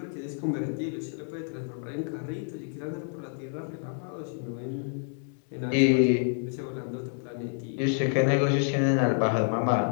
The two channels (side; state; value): right; silent; 59 dB below the other